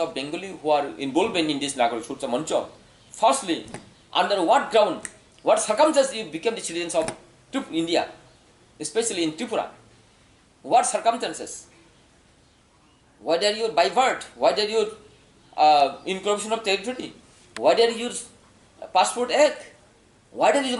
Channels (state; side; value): identical; both; correlation 1.00